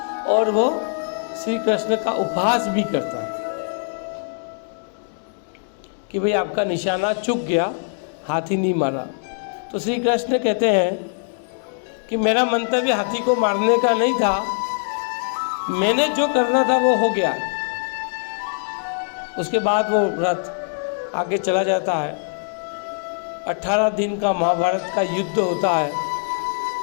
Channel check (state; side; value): silent; right; digital silence